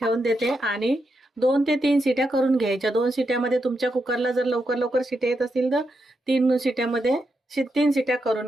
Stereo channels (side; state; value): both; normal; correlation 0.84